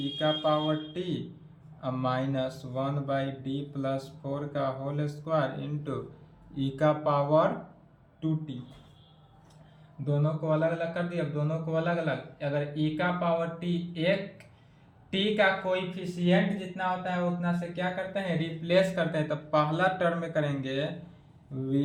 का power t minus 1 by D plus 4 का होल स्क्वायर इंटू ई का पावर 2t। दोनों को अलग अलग कर दिया। अब दोनों को अलग अलग, अगर e का पावर t एक t का कोएफिशिएंट जितना होता है उतना से क्या करते हैं, रिप्लेस करते हैं। तो पहला टर्म में करेंगे v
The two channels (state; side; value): identical; both; correlation 1.00